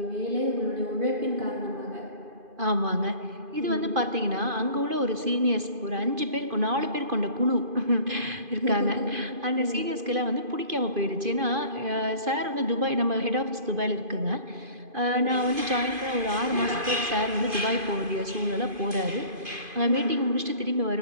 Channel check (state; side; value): late; left; 2.5 ms